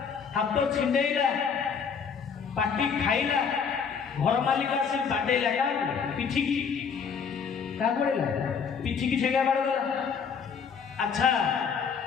हाथ छिंडेला पाटी खाइला घर मालिक आसी बाडेला का पिठिकी क्या पड़ेगा पिठी की ठेगा बाड़गला अच्छा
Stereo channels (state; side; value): quieter; right; 6.4 dB